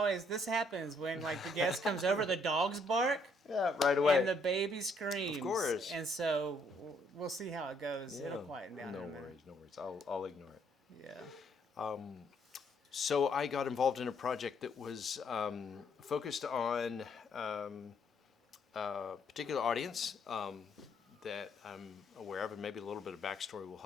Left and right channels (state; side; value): normal; both; correlation 0.69